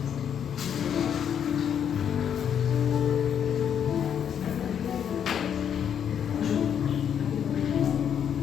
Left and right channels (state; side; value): quieter; right; 8.5 dB